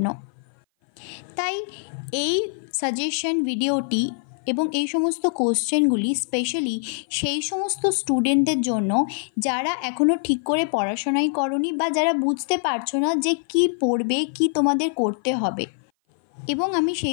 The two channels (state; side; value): silent; right; 57 dB below the other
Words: তাই এই সাজেশন ভিডিওটি এবং এই সমস্ত কোশ্চেনগুলি স্পেশালি সেই সমস্ত স্টুডেন্টদের জন্য যারা এখনও ঠিক করে পড়াশোনাই করনি বা যারা বুঝতে পারছো না যে কি পড়বে, কি তোমাদের করতে হবে। এবং আমি